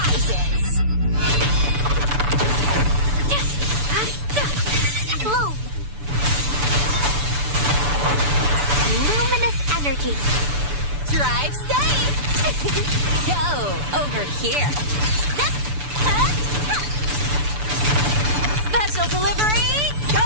Bloom. Luminous energy. Drive safe. Go over here. Special delivery.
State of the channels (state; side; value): late; left; 6.9 ms